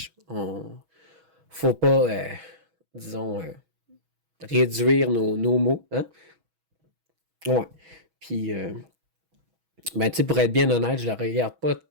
Faut pas, disons, réduire nos mots. Hein? Ouais. Puis, ben, tu sais, pour être bien honnête, je la regarde pas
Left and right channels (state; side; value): late; left; 6.2 ms